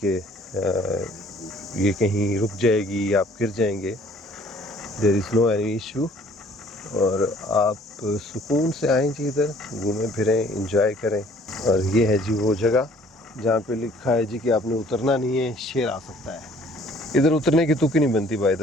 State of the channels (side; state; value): both; normal; correlation 0.56